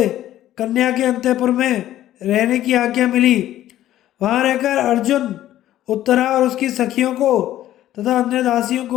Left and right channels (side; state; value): right; quieter; 13.2 dB